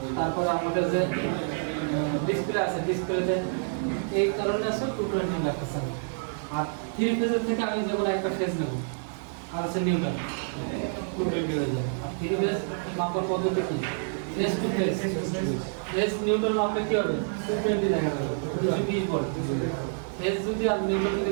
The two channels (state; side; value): silent; left; 59 dB below the other